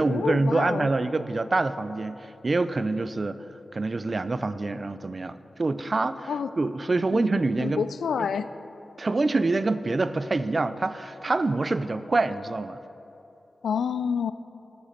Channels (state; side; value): normal; both; correlation 0.93